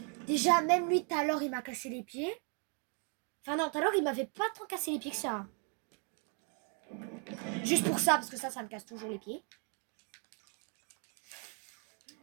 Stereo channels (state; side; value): quieter; left; 39.5 dB